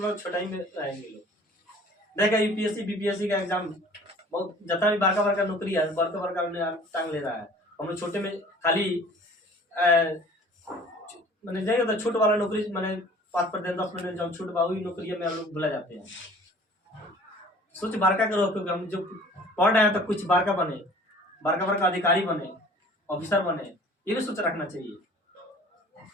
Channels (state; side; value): normal; both; correlation 0.49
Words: छोटा ही में रहेंगे लोग। देखा UPSC BPSC का एग्जाम बहुत जितना भी बारका का नौकरी है, बड़का टांग ले रहा है। हम लोग छोटे में खाली मैंने जाएगा तो छोट वाला नौकरी मैंने 5% 10% जब छूट बा वही नौकरी में हम लोग भुला जाते हैं। सोच बारका करो, क्योंकि हम जो पढ़ रहे हैं तो कुछ बारका बने, बारका अधिकारी बने, ऑफिसर बने, ये भी सोच रखना चाहिए।